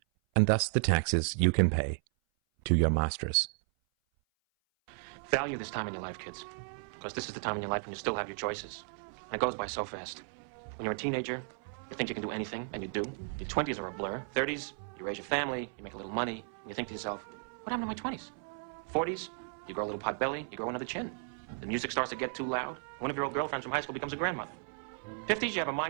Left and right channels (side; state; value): left; silent; 55 dB below the other